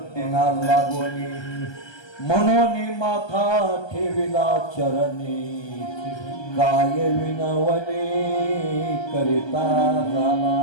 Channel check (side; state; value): right; late; 1.2 ms